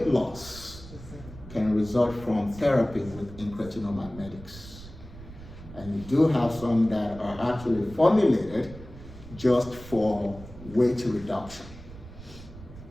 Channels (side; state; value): right; noise; rumble, 16 dB below the sound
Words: loss can result from therapy with incretin-mimetics. And you do have some that are actually formulated just for weight reduction.